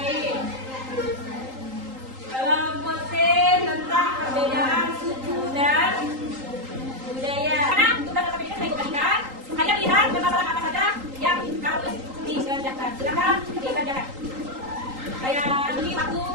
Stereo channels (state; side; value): late; left; 3.8 ms